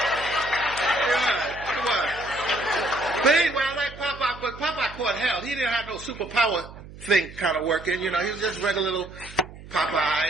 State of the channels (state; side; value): noise; right; hum, 16 dB below the sound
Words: What? But anyway, I like Popeye, but Popeye caught hell. He didn't have no superpower thing kind of working. You know, he was just regular little